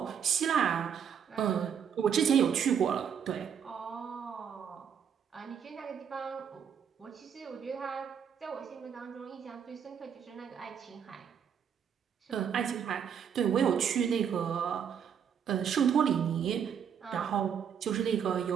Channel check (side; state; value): left; quieter; 7.8 dB